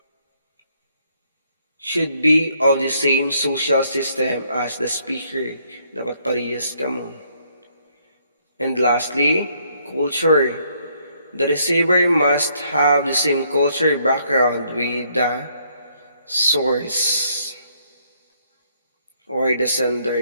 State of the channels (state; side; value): inverted; both; correlation -0.69